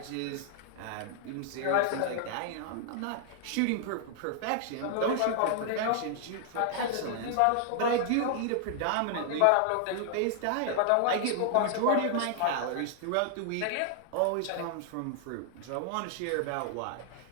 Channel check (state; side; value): different; both; correlation 0.00